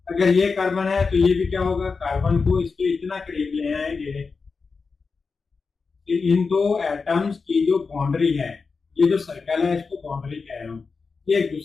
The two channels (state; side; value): quieter; right; 4.7 dB